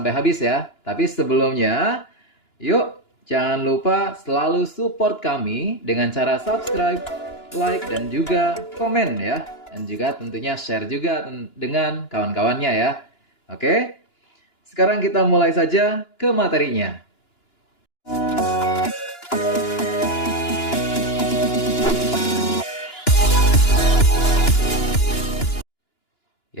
habis ya. Tapi sebelumnya, yuk, jangan lupa selalu support kami dengan cara subscribe, like, dan juga komen ya. Dan juga tentunya share juga dengan kawan-kawannya ya. Oke, sekarang kita mulai saja ke materinya.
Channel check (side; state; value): right; late; 2.9 ms